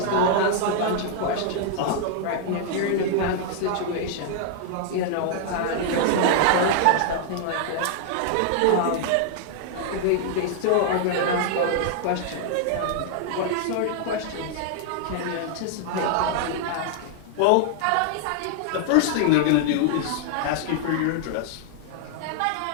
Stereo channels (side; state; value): both; different; correlation -0.01